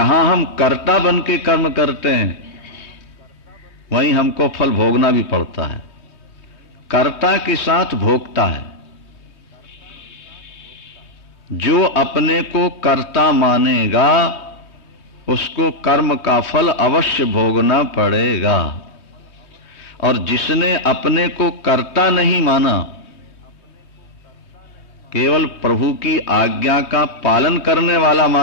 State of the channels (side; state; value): right; late; 3.1 ms